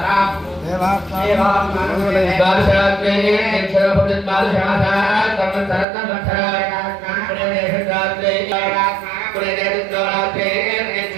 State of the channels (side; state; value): left; drops out; at 5.9 s